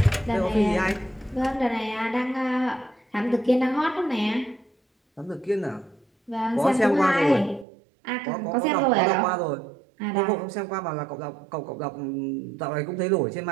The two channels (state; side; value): drops out; left; at 7.7 s